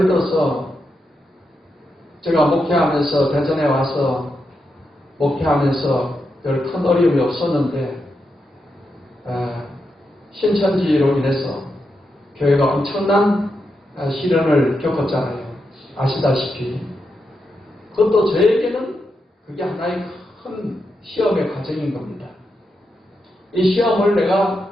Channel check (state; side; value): normal; both; correlation 0.85